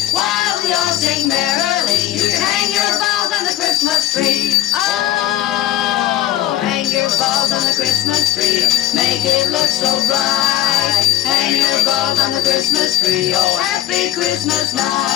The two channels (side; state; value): right; quieter; 13.1 dB